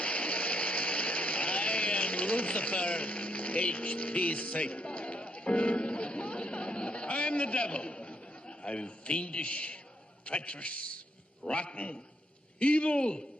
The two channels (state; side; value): normal; both; correlation 0.75